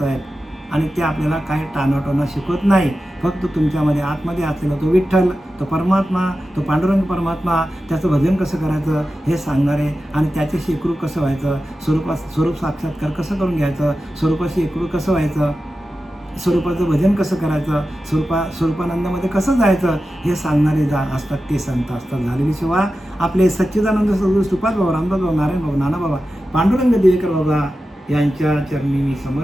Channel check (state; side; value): normal; both; correlation 0.93